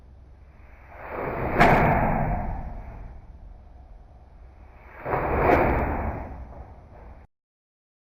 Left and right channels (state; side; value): identical; both; correlation 1.00